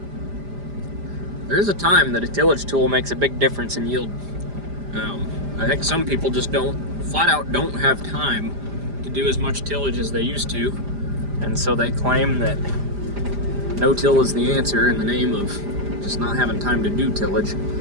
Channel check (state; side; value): late; left; 5.0 ms